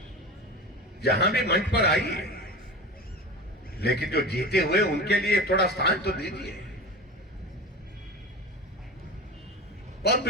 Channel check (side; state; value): both; normal; correlation 0.31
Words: जहां भी मंच पर आइए, लेकिन जो जीते हुए उनके लिए थोड़ा स्थान तो दीजिए। बहुत